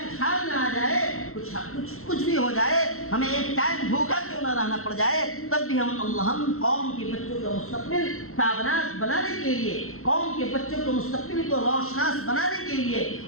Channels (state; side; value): late; right; 0.62 ms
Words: کچھ حال نہ آ جائے، کچھ بھی ہو جائے، ہمیں ایک ٹائم بھوکا کیوں نہ رہنا پڑ جائے، تب بھی ہم قوم کے بچوں کا مستقبل تابناک بنانے کے لیے، قوم کے بچوں کو مستقبل کو روشناس بنانے کے لیے